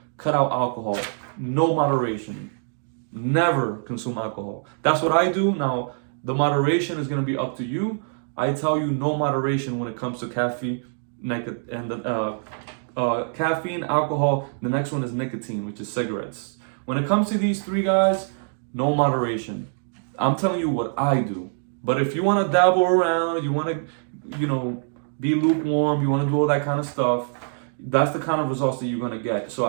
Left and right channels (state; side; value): silent; left; digital silence